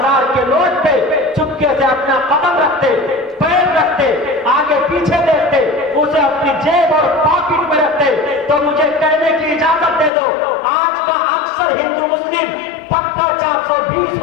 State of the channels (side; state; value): right; drops out; at 10.1 s